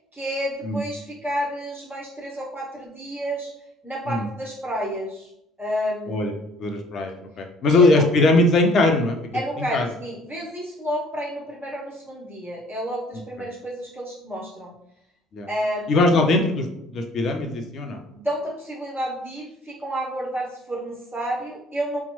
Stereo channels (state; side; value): normal; both; correlation 0.57